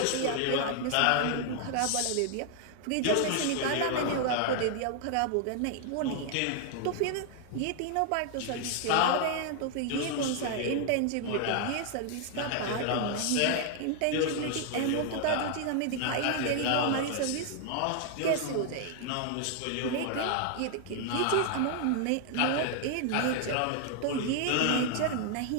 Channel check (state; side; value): different; both; correlation 0.00